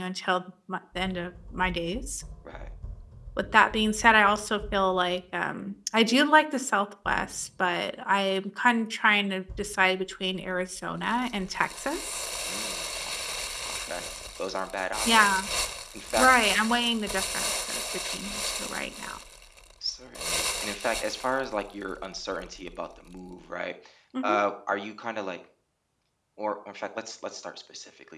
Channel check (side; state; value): both; identical; correlation 1.00